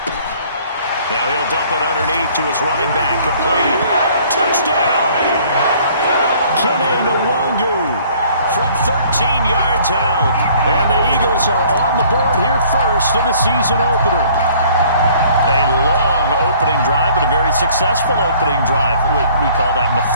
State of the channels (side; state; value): both; inverted; correlation -0.56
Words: Now he'll dump it underneath to his running back. Complete. Touchdown! Kene Nwangu from 13 yards out. And the Eagles are on the board here first in the season opener. A long opening drive, but a very successful opening drive. We call that